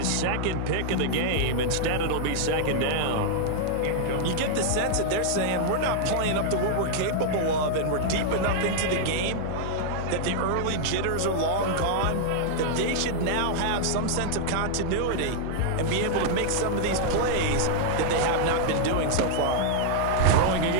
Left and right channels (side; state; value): both; different; correlation -0.01